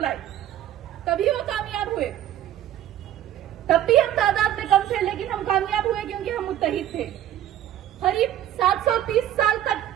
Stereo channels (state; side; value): quieter; left; 11.9 dB